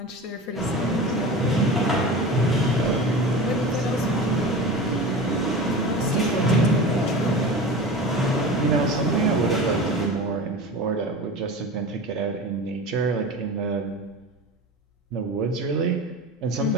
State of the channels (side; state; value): both; normal; correlation 0.32